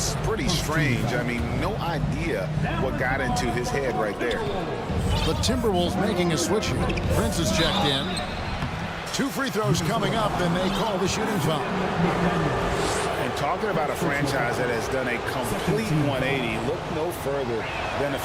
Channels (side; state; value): both; identical; correlation 1.00